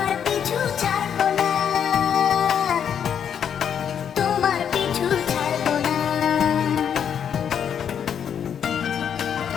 পিছু ছাড়বো না। তোমার পিছু ছাড়বো না।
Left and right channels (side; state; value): right; quieter; 8.3 dB